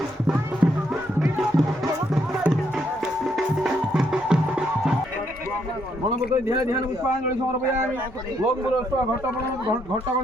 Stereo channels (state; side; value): normal; both; correlation 0.74